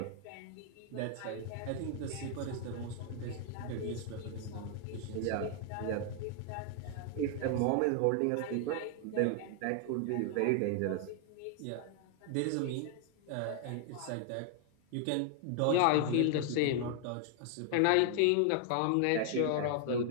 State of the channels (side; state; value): both; different; correlation 0.00